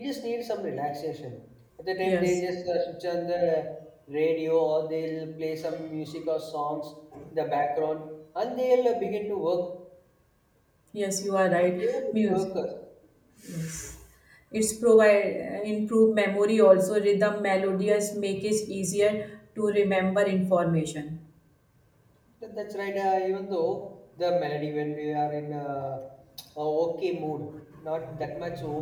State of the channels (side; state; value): both; identical; correlation 1.00